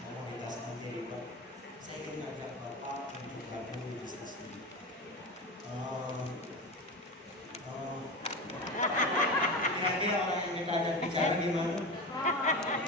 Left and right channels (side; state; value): both; normal; correlation 0.25